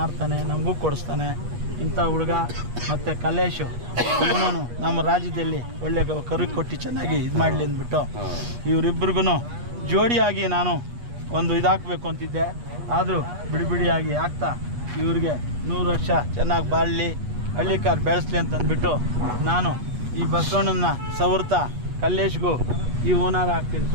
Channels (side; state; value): left; late; 8.3 ms